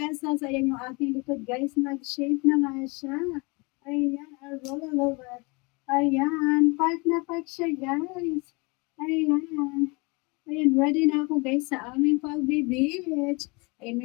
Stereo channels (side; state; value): right; quieter; 28.4 dB